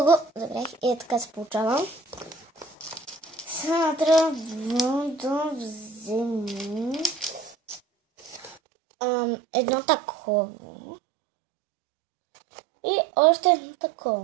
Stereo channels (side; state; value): left; drops out; at 8.6 s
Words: го забрах и така се получава. Сега трябва да вземем едно такова и още едно